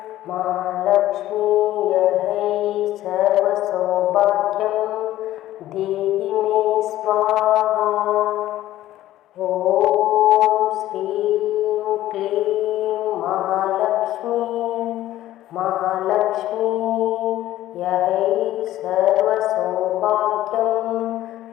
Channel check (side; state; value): right; quieter; 14.2 dB